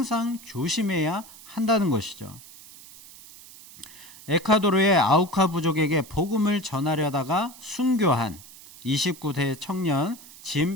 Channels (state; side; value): noise; right; hiss, 19 dB below the sound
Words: 조심해야 한다는 것이죠. 에콰도르의 아우카 부족에게 복음을 전하려다가 순교한 29세 청년